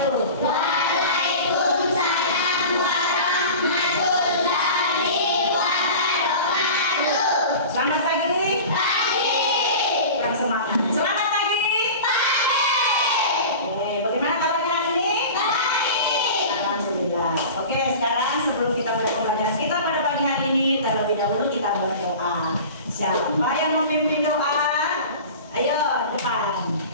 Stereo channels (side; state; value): both; inverted; correlation -0.36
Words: Waalaikumsalam warahmatullahi wabarakatuh. Selamat pagi. Pagi. Kurang semangat. Selamat pagi. Pagi. Oke, bagaimana kabarnya hari ini? Baik. Alhamdulillah. Oke, sekarang sebelum kita mulai pembelajaran kita pada pagi hari ini, terlebih dahulu kita berdoa. Siapa yang memimpin doa? Ayo, depan.